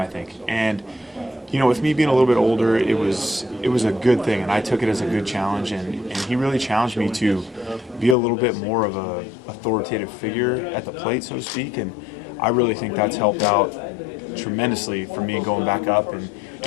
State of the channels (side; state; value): right; drops out; at 8.2 s